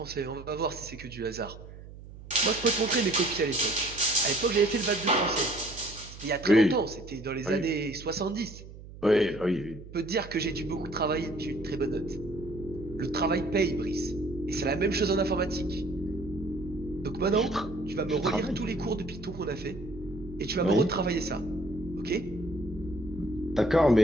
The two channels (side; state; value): right; noise; hum, 15 dB below the sound